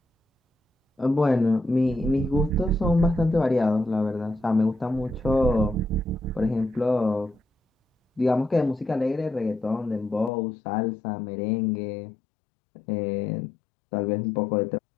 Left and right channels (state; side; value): drops out; right; at 10.3 s